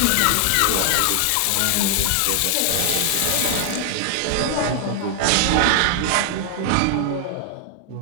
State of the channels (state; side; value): different; both; correlation 0.00